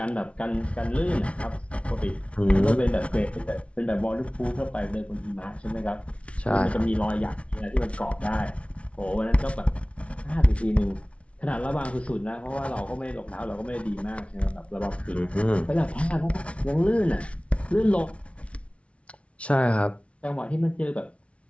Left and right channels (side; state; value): right; late; 0.062 ms